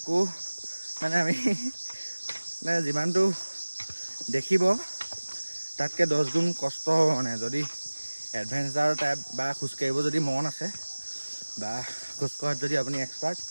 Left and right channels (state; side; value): inverted; both; correlation -1.00